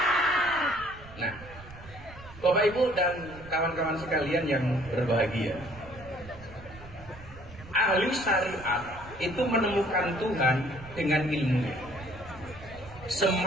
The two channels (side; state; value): right; noise; rumble, 17 dB below the sound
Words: Nah, Bapak Ibu dan kawan-kawan sekalian yang berbahagia, ahli syariat itu menemukan Tuhan dengan ilmunya.